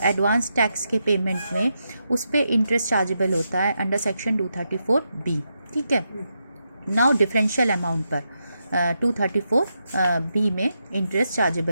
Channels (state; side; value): inverted; both; correlation -0.85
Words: एडवांस टैक्स के पेमेंट में, उस पर इंटरेस्ट चार्जेबल होता है अंडर सेक्शन 234B. ठीक है, नाउ डिफरेंशियल अमाउंट पर 234B में इंटरेस्ट